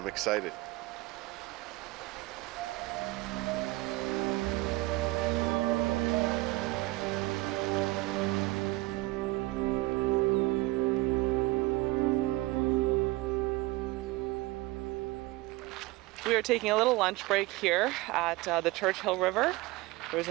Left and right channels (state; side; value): quieter; left; 20.2 dB